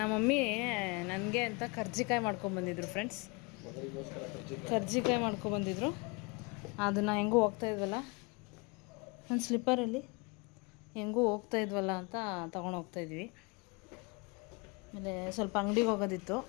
ಮಮ್ಮಿ ನನಗೆ ಅಂತ ಕರ್ಜಿಕಾಯಿ ಮಾಡ್ಕೊಂಬಂದಿದ್ರು ಫ್ರೆಂಡ್ಸ್. ಕರ್ಜಿಕಾಯಿ ಮಾಡ್ಕೊಬಂದಿದ್ರು. ಅದನ್ನು ಹೆಂಗೂ ಹೋಗ್ತಾಯಿದ್ವಲ್ಲ ಒಂದು ಸ್ಲಿಪ್ಪರಲ್ಲಿ ಹೆಂಗೂ ಹೋಗ್ತಾಯಿದ್ವಲ್ಲ ಅಂತ ತೊಗೊಂಡು ಹೋಗ್ತಾಯಿದ್ವಿ. ಆಮೇಲೆ ಸ್ವಲ್ಪ ಅಂಗಡಿಗೆ ಹೋಗೋದಿತ್ತು.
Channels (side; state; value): right; quieter; 29.2 dB